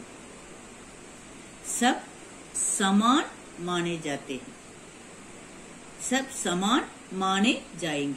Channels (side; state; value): both; identical; correlation 1.00